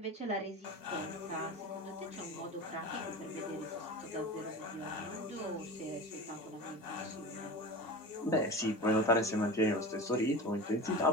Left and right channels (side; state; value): both; normal; correlation 0.30